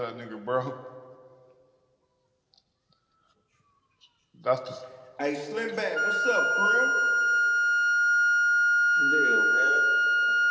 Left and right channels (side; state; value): both; identical; correlation 1.00